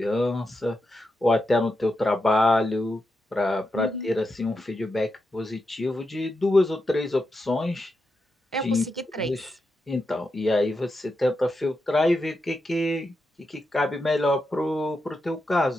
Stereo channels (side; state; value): both; normal; correlation 0.86